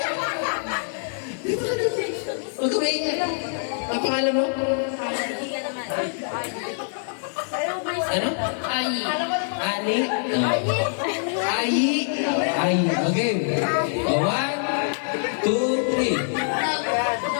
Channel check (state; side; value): silent; right; 62 dB below the other